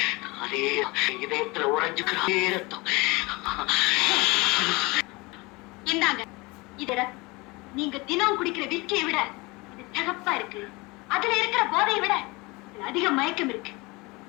இதயத்துல உறைஞ்சுக்கிற ரத்தம். இந்தாங்க, இது ரத்தம். நீங்க தினம் குடிக்கிற விஸ்கியை விட இது சிகப்பா இருக்கு. அதுல இருக்கிற போதையை விட இதுல அதிக மயக்கம் இருக்கு.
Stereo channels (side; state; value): right; quieter; 24.7 dB